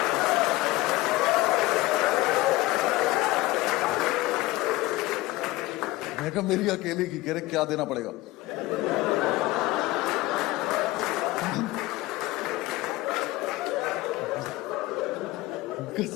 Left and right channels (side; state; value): right; quieter; 19.0 dB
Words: मैं कहा मेरी अकेले की। कह रहे क्या देना पड़ेगा?